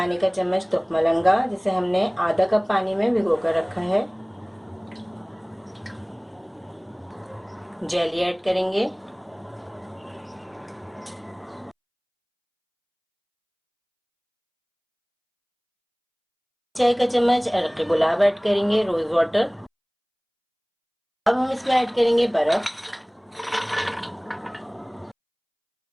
का चम्मच तुखमलंगा, जिसे हमने आधा कप पानी में भिगो कर रखा है। जेली ऐड करेंगे। चाय का चम्मच अरक गुलाब ऐड करेंगे, रोज वाटर। अब हम इसमें ऐड करेंगे बर्फ।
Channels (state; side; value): identical; both; correlation 1.00